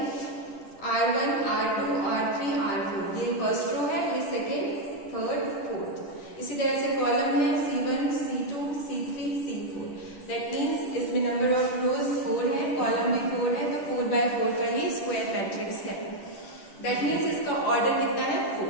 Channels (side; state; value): right; late; 10 ms